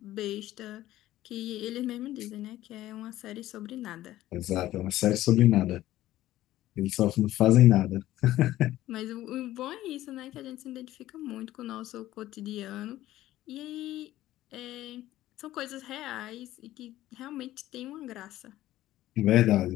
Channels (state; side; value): quieter; right; 14.8 dB